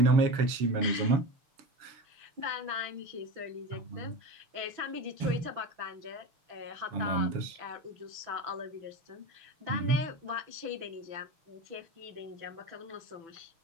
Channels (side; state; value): left; late; 6.1 ms